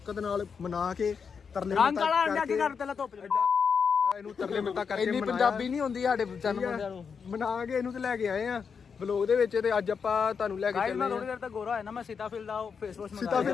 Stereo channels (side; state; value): right; quieter; 6.1 dB